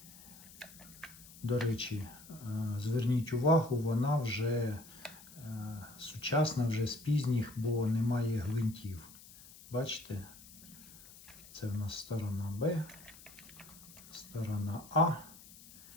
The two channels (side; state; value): left; noise; hiss, 19 dB below the sound